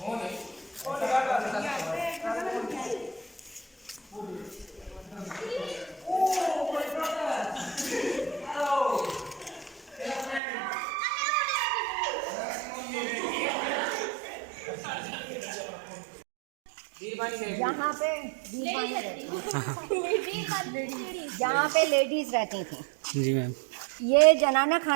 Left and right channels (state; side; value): drops out; left; at 10.4 s